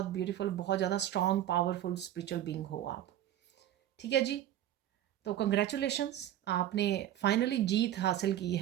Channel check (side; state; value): left; quieter; 12.1 dB